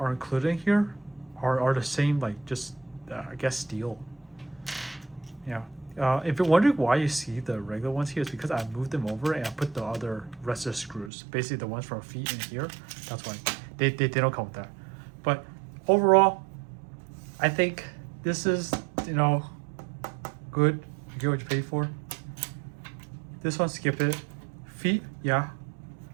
included here are the same, like just I guess steel. Yeah. If you're wondering why you see the regular ones here, it's because I moved them over and I put the other rest of the screws, basically the ones from feet in here. That's why they don't come with that. But overall, I think this is, you know, good. You get what you pay for. This one, skip it. Feet, yeah.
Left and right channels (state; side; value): drops out; left; at 11.1 s